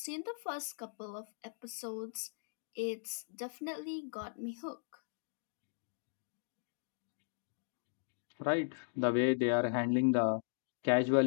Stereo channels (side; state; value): right; silent; digital silence